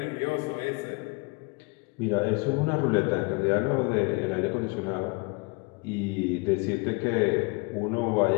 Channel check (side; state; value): right; quieter; 28.7 dB